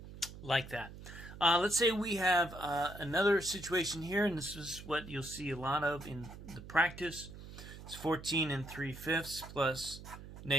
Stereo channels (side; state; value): right; noise; hum, 14 dB below the sound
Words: like that. Let's say we have another situation here, and this is what you'll see a lot of in the practice. It's 14 and 3/5 plus